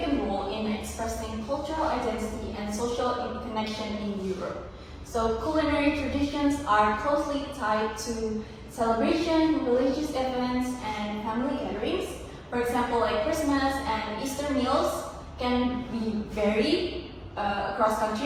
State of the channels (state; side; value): identical; both; correlation 1.00